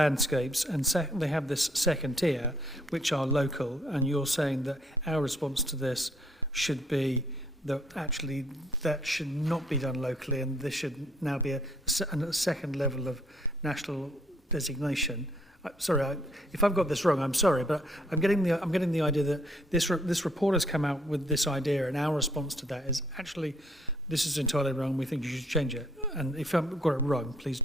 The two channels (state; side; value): normal; both; correlation 0.66